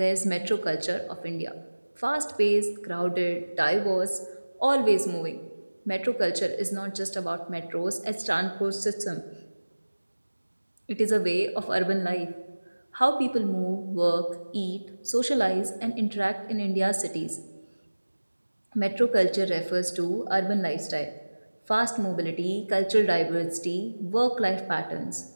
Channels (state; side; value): inverted; both; correlation -1.00